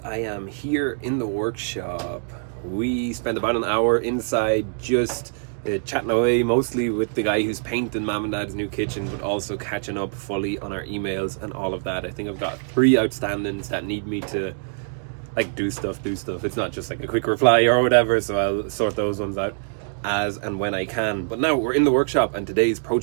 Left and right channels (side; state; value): left; silent; digital silence